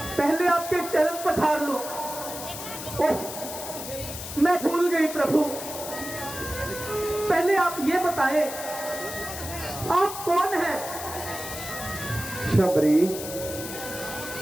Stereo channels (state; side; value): noise; left; hiss, 9 dB below the sound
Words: पहले आपके चरण पठार लो। ओह, मैं भूल गई प्रभु। पहले आप ये बताएं, आप कौन हैं? शबरी,